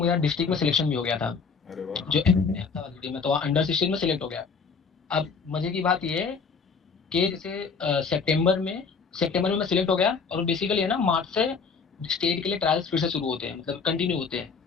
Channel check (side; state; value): right; quieter; 5.3 dB